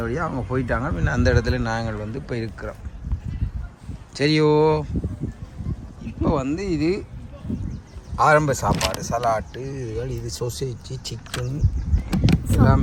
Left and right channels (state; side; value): identical; both; correlation 1.00